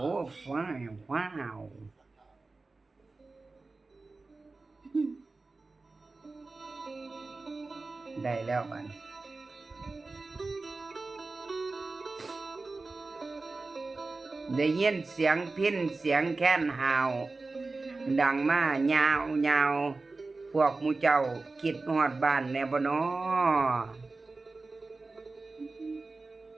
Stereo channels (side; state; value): left; quieter; 3.6 dB